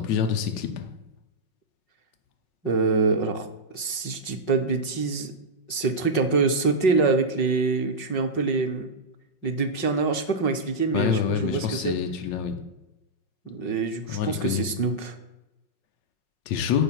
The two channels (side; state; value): right; late; 5.4 ms